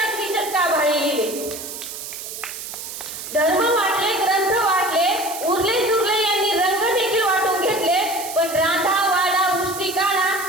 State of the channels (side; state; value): right; noise; hiss, 9 dB below the sound